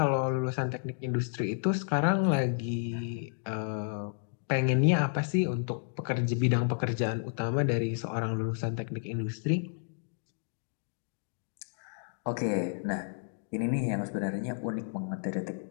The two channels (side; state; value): right; silent; digital silence